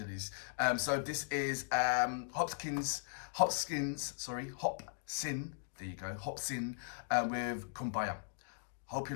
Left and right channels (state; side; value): silent; right; digital silence